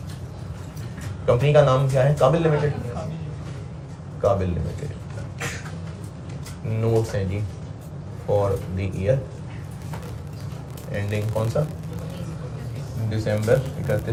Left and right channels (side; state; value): both; identical; correlation 1.00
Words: कंपनी का नाम क्या है? काबिल लिमिटेड। काबिल लिमिटेड। नोट्स हैं जी फॉर द ईयर एंडिंग कौन सा? दिसंबर